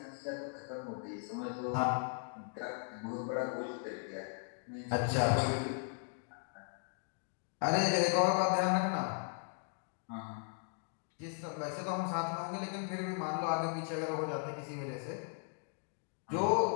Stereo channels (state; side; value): silent; right; 53 dB below the other